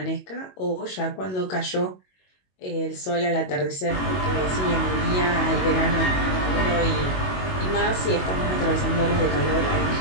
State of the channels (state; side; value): late; right; 22 ms